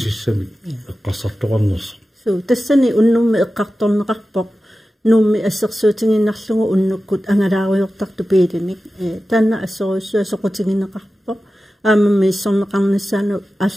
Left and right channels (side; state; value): both; normal; correlation 0.94